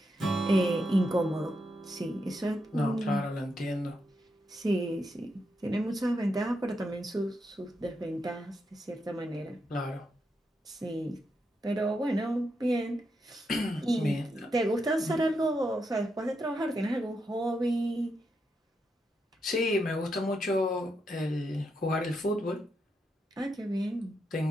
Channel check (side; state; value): both; normal; correlation 0.83